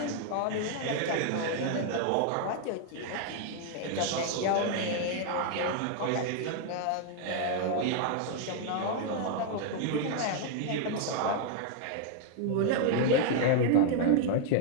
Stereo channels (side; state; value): both; different; correlation 0.00